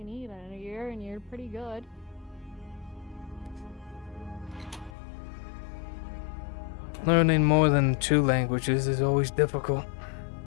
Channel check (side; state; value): right; drops out; at 4.9 s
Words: need in a year, and you're pretty good. Learning more than 2 languages is always difficult.